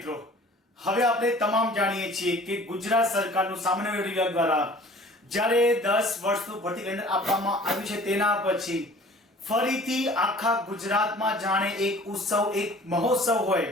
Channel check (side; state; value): both; normal; correlation 0.48